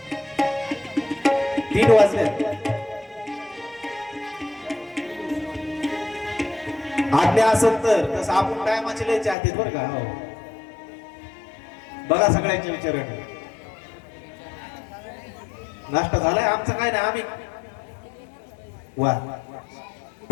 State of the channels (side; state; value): right; drops out; at 9.3 s